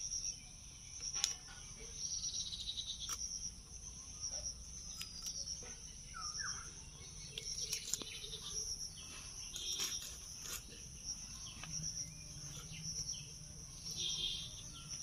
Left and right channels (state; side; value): identical; both; correlation 1.00